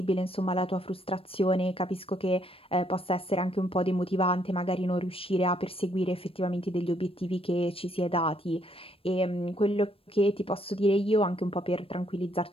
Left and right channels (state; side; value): late; right; 0.27 ms